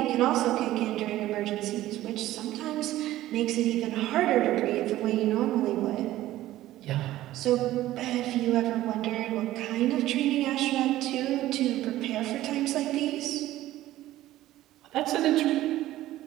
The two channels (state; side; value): quieter; left; 15.0 dB